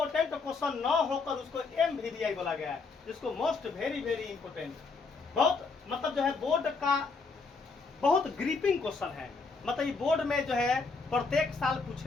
न होकर उसको MVDI बोला गया है, जिसको मोस्ट वेरी वेरी इंपॉर्टेंट, बहुत मतलब जो है बोर्ड का बहुत ग्रिपिंग क्वेश्चन है। मतलब ये बोर्ड में जो है प्रत्येक साल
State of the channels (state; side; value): quieter; right; 4.4 dB